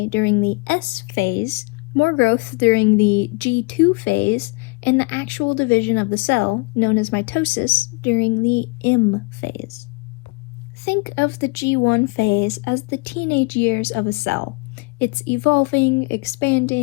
during the S phase, more growth during the G2 phase, and the actual division of the cell, known as mitosis, during the M phase. Think of the G1 phase as the teenage years of a cell. It's evolving,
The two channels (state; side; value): quieter; right; 29.1 dB